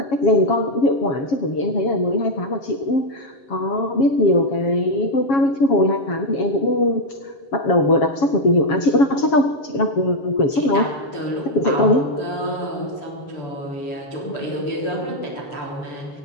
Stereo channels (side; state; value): right; late; 7.3 ms